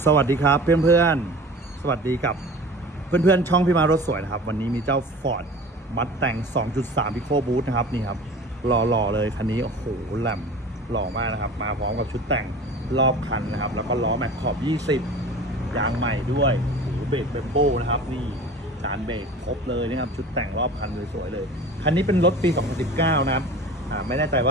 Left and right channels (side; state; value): both; normal; correlation 0.39